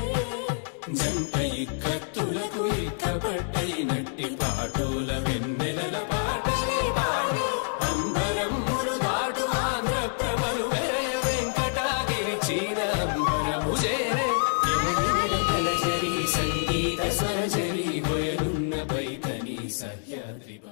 జంట ఇక్కత్తులకు ఇక్కపట్టయినట్టి పాటోల వెన్నెలల పాటలే పాడే అంబరమ్ములు దాటు ఆంధ్ర ప్రభలు వెంకటాగిరి చీర అంబరము చేరే సంగీత స్వరజరి బొయలున్న బైతని సహ్యాద్రి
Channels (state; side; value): silent; right; digital silence